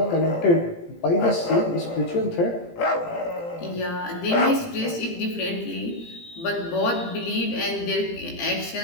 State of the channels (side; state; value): right; late; 18 ms